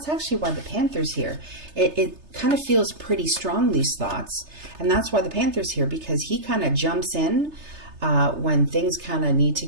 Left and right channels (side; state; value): left; late; 3.3 ms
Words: actually why the Panther's here. It kind of feels pretty strong, these thoughts. And that's why the Panther's here, because he kind of jumps in when things kind of need to